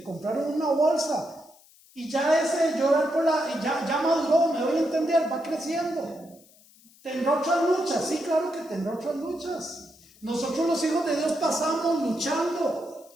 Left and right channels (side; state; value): left; noise; hiss, 27 dB below the sound